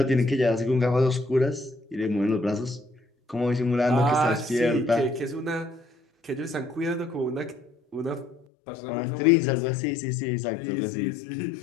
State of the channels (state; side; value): drops out; right; at 8.5 s